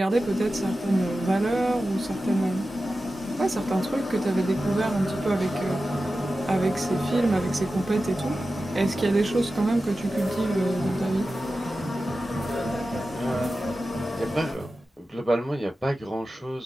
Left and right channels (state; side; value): normal; both; correlation 0.93